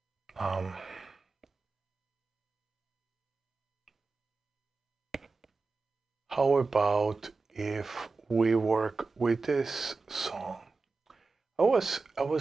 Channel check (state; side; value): quieter; left; 4.0 dB